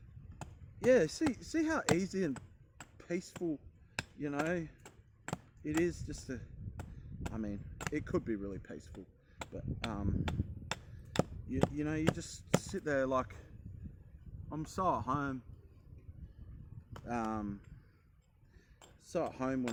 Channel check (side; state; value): both; identical; correlation 1.00